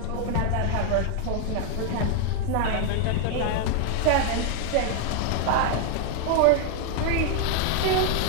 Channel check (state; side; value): different; both; correlation 0.00